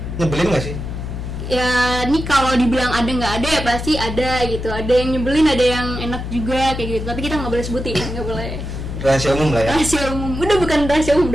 nyebelin gak sih? Ya ini kalau dibilang ada nggak ada ya pasti ada gitu. Ada yang nyebelin, ada yang enak juga kayak gitu. Tapi kita nggak boleh sebutin, nggak boleh. Rahasia umum lah ya. Rahasia umum, udah bukan rahasia umum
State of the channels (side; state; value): left; noise; hum, 6 dB below the sound